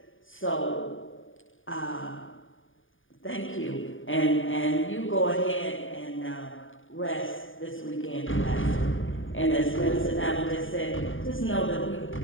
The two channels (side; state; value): right; late; 0.58 ms